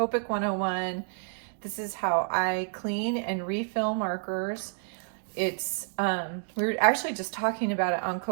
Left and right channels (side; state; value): left; silent; digital silence